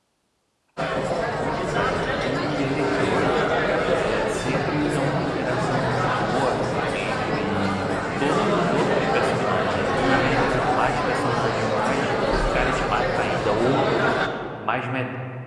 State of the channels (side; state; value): both; identical; correlation 1.00